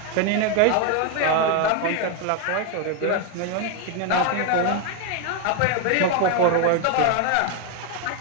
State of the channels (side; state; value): both; different; correlation 0.01